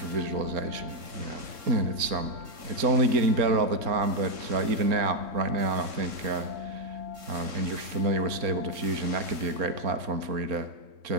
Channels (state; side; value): late; left; 3.6 ms